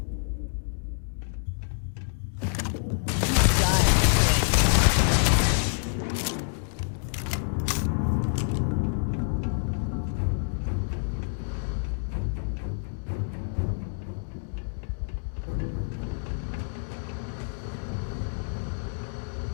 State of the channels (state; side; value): silent; right; digital silence